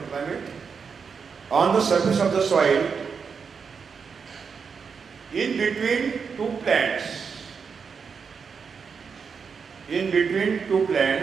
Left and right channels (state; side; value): quieter; left; 5.9 dB